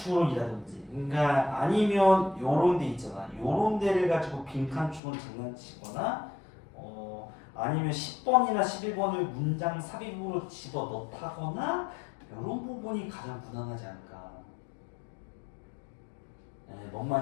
그러니까 아니면 요런 데 있잖아. 요런 데를 가지고 빈칸 추론 장난치거나 아니면 10번이나 11번을 문장 삽입으로 집어넣다거나 이런 부분이 가장 무난하지 않을까. 뭔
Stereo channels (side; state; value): right; drops out; at 5.0 s